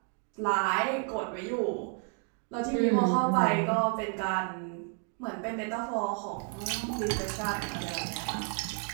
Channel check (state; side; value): quieter; left; 39.7 dB